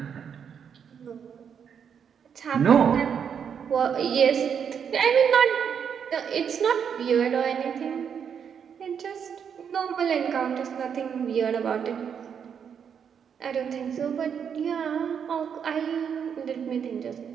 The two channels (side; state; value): left; quieter; 7.5 dB